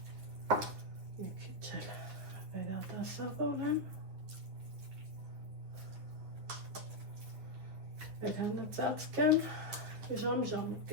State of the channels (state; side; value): late; left; 9.8 ms